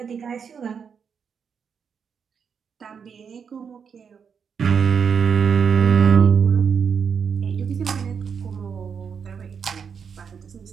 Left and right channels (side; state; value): left; quieter; 6.6 dB